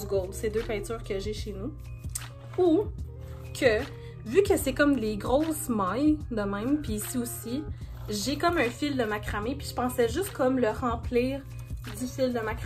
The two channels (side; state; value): both; identical; correlation 1.00